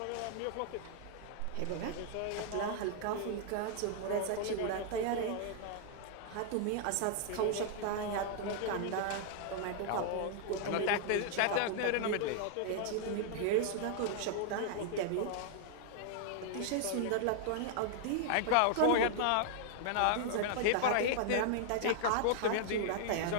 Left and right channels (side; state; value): both; different; correlation -0.01